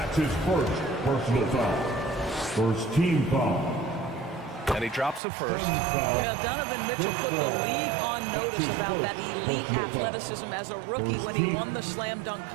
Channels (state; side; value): drops out; left; at 5.2 s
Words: his first personal foul. First team foul. And he drops a first. Yeah, Donovan Mitchell put the league on notice about that elite athleticism as a rookie when he won the slam dunk